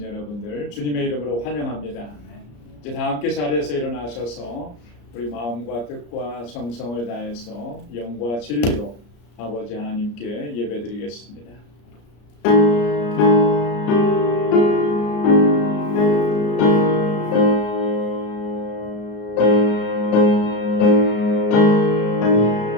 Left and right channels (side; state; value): right; late; 34 ms